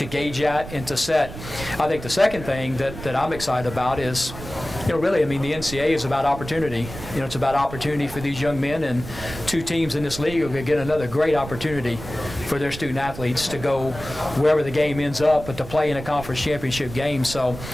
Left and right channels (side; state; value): right; noise; rumble, 12 dB below the sound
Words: gauge at and to set. I think the second thing that I'm excited about is, really, I mean, the NCAA is about opportunity. It's about opportunity for these young men, and 2 teams in this league are going to get another great opportunity for their student athletes to go wherever the game ends up, but to play in a conference championship game. So,